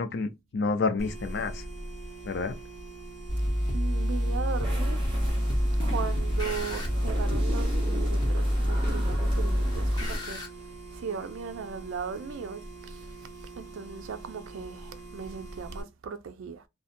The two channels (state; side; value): normal; both; correlation 0.76